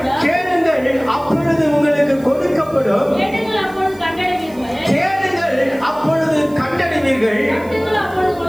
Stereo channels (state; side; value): noise; right; hiss, 26 dB below the sound